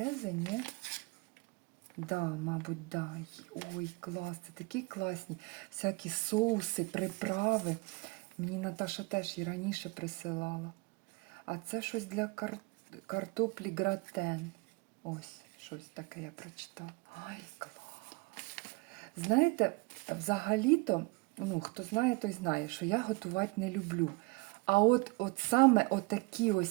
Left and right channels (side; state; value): left; quieter; 26.5 dB